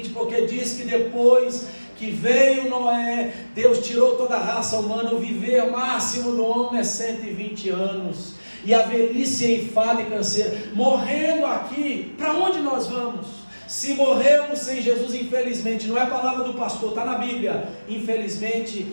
porque diz que depois que veio Noé, Deus tirou toda a raça humana. O viver máximo do homem é 120 anos. E a velhice é enfado e canseira. Morrendo aqui, para onde nós vamos? Se morrermos sem Jesus, infelizmente, não é a palavra do pastor, está na Bíblia, infelizmente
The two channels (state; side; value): inverted; both; correlation -1.00